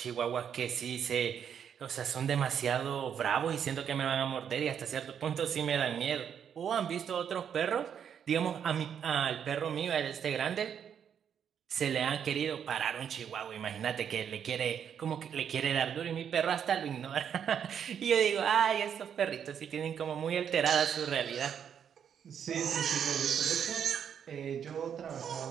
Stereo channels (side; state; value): left; quieter; 8.2 dB